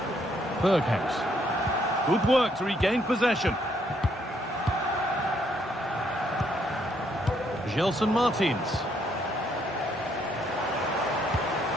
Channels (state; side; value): normal; both; correlation 0.71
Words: Berghaus. Good work to regain possession. Gelson Martins.